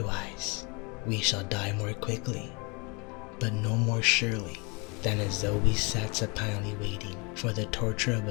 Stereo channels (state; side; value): quieter; right; 30.0 dB